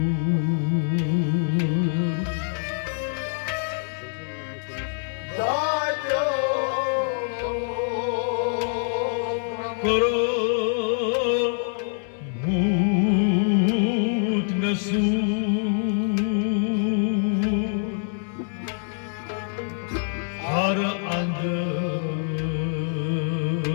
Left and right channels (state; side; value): silent; right; 62 dB below the other